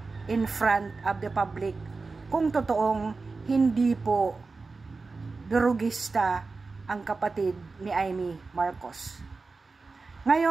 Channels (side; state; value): left; quieter; 4.0 dB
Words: in front of the public kung totoong hindi po durugista ang kapatid ni Amy Marcos.